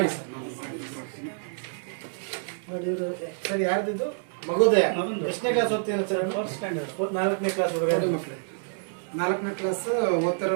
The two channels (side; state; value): left; silent; digital silence